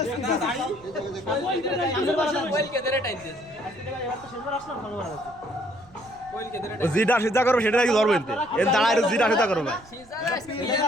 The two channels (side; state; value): right; noise; rumble, 24 dB below the sound